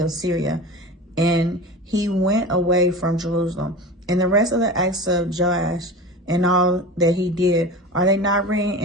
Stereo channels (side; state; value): both; normal; correlation 0.32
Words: of Syria. And he went away from Jerusalem. And the rest of the acts of Joash and all that he did, are they not written